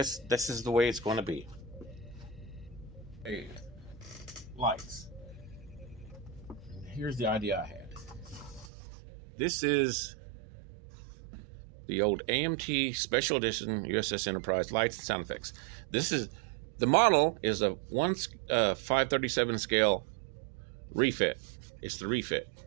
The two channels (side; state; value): left; drops out; at 8.7 s